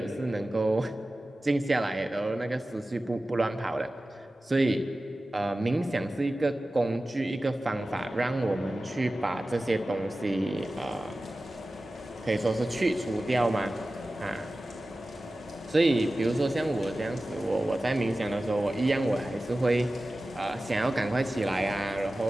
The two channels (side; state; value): both; normal; correlation 0.96